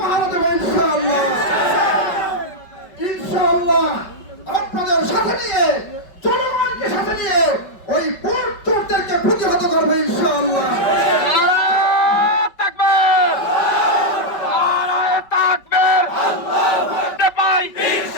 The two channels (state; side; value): late; right; 5.3 ms